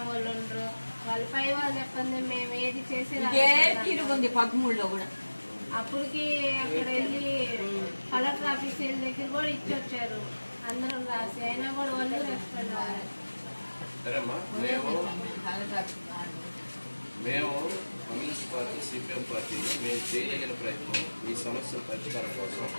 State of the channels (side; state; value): both; inverted; correlation -1.00